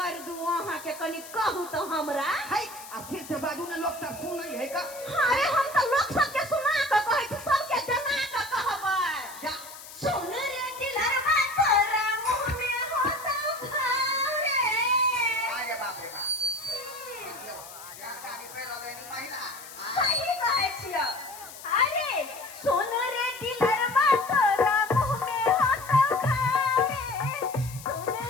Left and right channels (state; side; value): noise; left; hiss, 15 dB below the sound